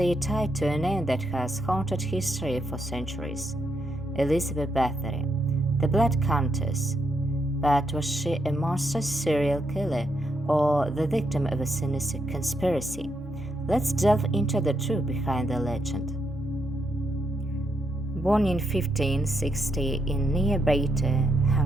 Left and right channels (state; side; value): normal; both; correlation 0.79